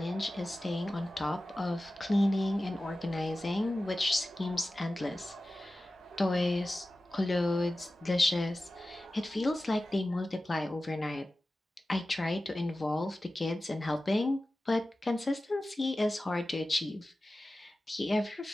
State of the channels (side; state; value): both; normal; correlation 0.95